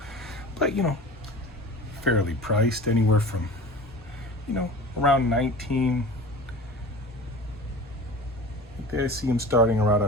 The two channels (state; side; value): normal; both; correlation 0.37